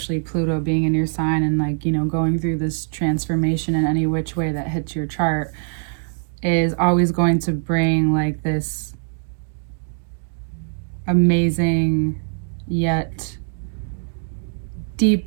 Pluto being in your sign, and like, you know, going through this transformation in any which way that hits your chart is always going to bring like this amazing yet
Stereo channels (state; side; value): silent; left; digital silence